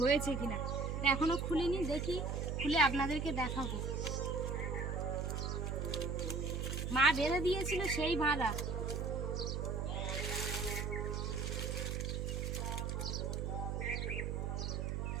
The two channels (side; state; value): right; noise; hum, 1 dB below the sound